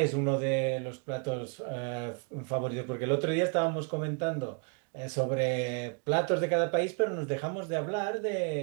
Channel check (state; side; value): quieter; left; 37.4 dB